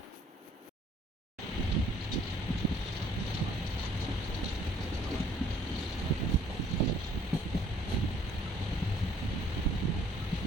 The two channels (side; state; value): both; normal; correlation 0.60